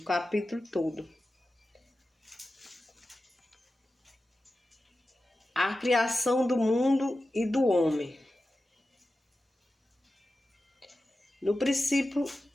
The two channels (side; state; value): both; normal; correlation 0.93